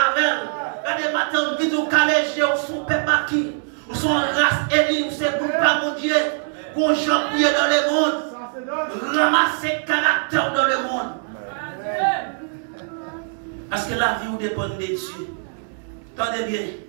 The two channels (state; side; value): silent; left; digital silence